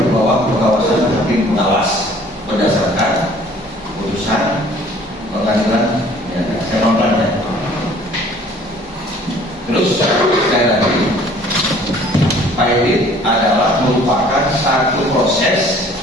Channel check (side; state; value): both; normal; correlation 0.54